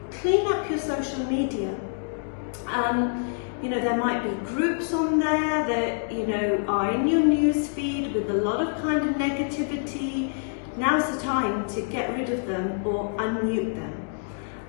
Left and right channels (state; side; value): silent; right; digital silence